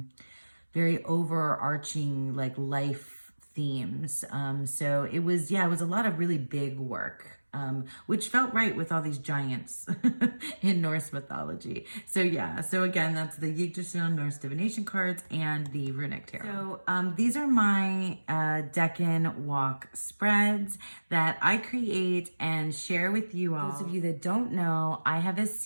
very overarching like life themes. So it was a lot of really big work, which felt right with all these giants in Norse mythology. So yeah, so again, that's the Yggdrasil Norse divination cards and the Runic Tarot. So these are my Deccan walk spreads that I create and share with you all. Those of you that don't know, I have a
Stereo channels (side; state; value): both; inverted; correlation -1.00